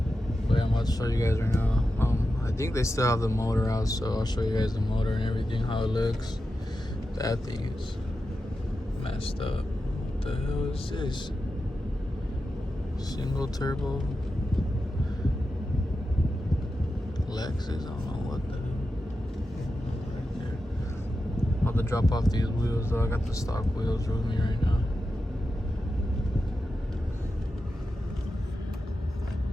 But yeah, I'm about to show you guys right now. I think they still have the motor out, so I'll show you guys the motor and everything, how it looks. That thing is messed up. What the hell is this? Single turbo Lexus, I don't know what the hell. Right there. I'm about to drop off these wheels though. I got the stock wheels with me right now.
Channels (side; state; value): both; normal; correlation 0.91